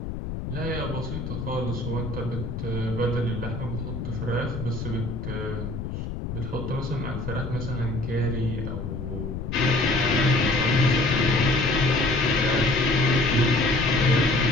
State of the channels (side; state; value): left; noise; rumble, 6 dB below the sound